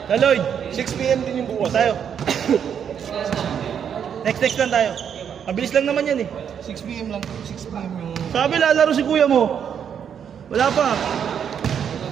Na Lloyd, 6 PM din yung bukas. Tayo. Next lang tayo. Mabilis lang naman yan eh. 6 PM lang. 6 PM yung... Sabi lalaro si kuya mo. Wala pa.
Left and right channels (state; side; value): quieter; left; 8.1 dB